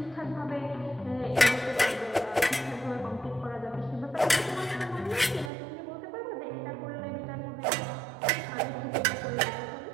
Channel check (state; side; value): drops out; left; at 5.5 s